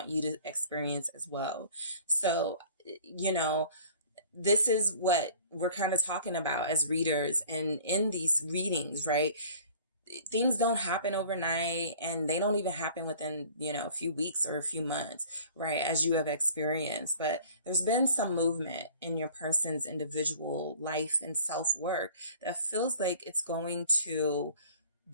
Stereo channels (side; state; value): both; inverted; correlation -0.49